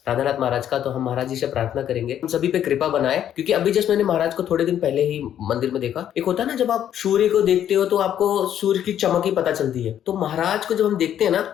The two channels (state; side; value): quieter; right; 10.3 dB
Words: राधानाथ महाराज का। तो हम महाराज जी से प्रार्थना करेंगे हम सभी पे कृपा बनाए, क्योंकि अभी जस्ट मैंने महाराज को थोड़े दिन पहले ही मंदिर में देखा। एक होता है ना, जब आप सूर्य को देखते हो तो आपको सूर्य की चमक ही पता चलती है। तो महाराज को जब हम देखते हैं ना,